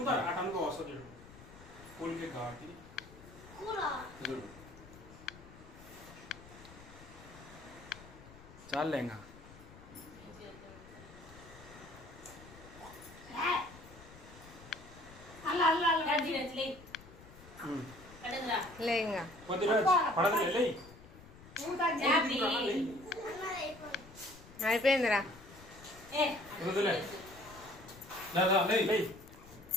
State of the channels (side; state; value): left; noise; rumble, 19 dB below the sound